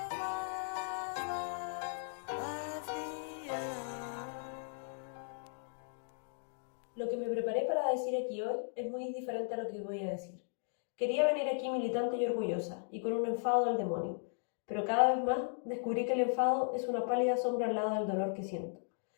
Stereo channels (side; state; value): right; silent; digital silence